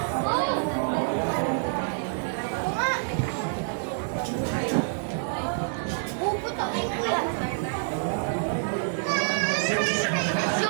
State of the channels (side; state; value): left; silent; digital silence